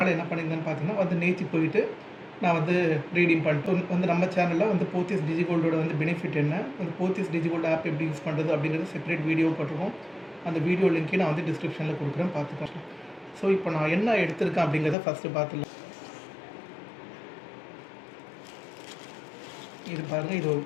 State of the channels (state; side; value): drops out; right; at 15.0 s